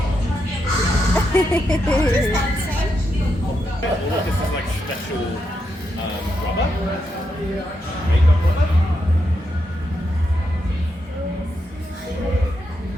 This is like special rubber. Makeup rubber.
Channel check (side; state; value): both; normal; correlation 0.83